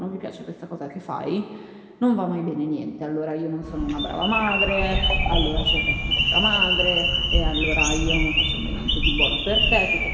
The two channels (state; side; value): identical; both; correlation 1.00